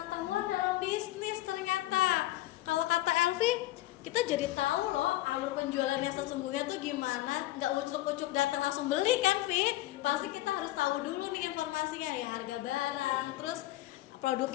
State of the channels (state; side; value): quieter; right; 16.5 dB